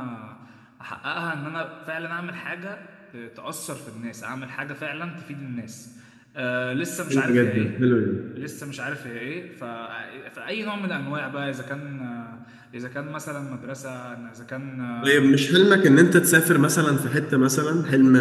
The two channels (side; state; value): both; identical; correlation 1.00